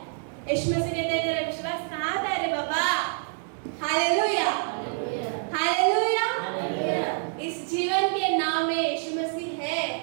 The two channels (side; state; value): left; silent; 60 dB below the other